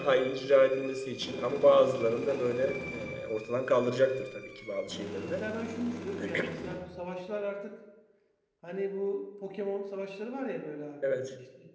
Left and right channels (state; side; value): identical; both; correlation 1.00